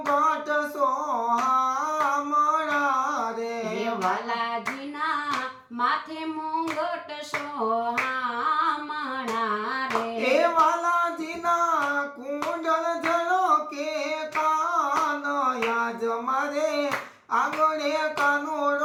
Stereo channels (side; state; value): both; identical; correlation 1.00